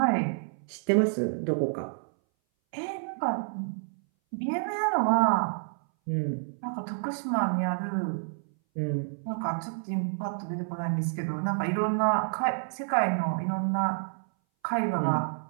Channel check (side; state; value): left; silent; 58 dB below the other